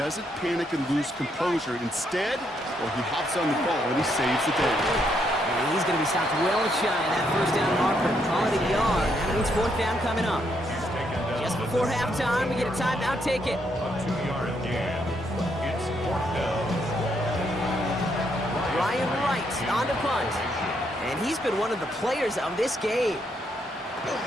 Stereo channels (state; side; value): normal; both; correlation 0.75